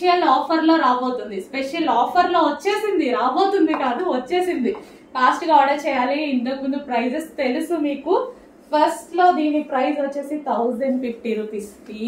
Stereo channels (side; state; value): both; identical; correlation 1.00